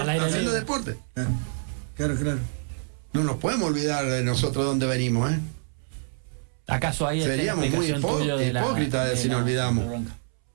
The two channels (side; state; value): left; silent; 61 dB below the other